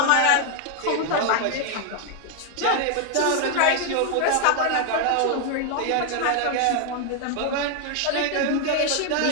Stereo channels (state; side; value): different; both; correlation 0.00